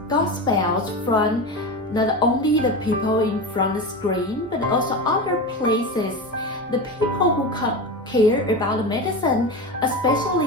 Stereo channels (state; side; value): normal; both; correlation 0.23